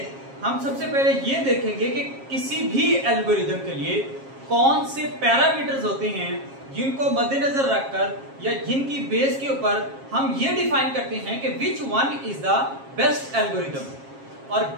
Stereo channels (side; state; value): left; late; 7.4 ms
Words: हम सबसे पहले ये देखेंगे कि किसी भी एल्गोरिदम के लिए कौन से पैरामीटर्स होते हैं जिनको मद्देनजर रखकर या जिनकी बेस के ऊपर हम ये डिफाइन करते हैं कि which one is the best algorithm, और